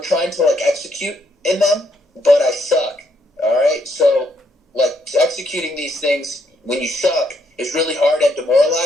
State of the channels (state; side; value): normal; both; correlation 0.73